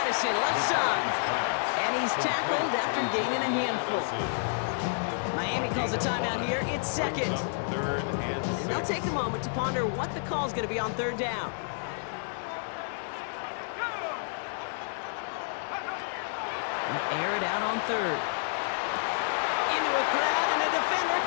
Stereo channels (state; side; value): silent; right; digital silence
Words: Addison, left side. And he's tackled after gaining a handful. Miami calls a timeout here. It's 2nd. 3rd and 6. They'll take a moment to ponder what the call's going to be on 3rd down. They'll air it out on 3rd. Into a crowd, and a defender